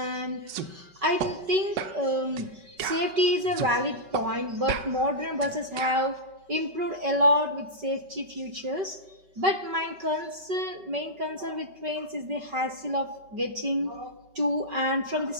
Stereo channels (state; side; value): late; left; 5.2 ms